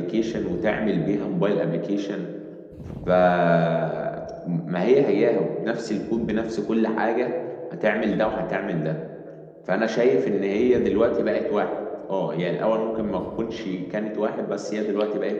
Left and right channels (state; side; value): identical; both; correlation 1.00